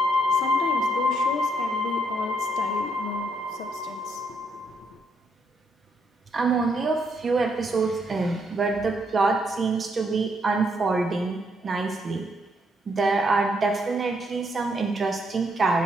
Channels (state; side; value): normal; both; correlation 0.75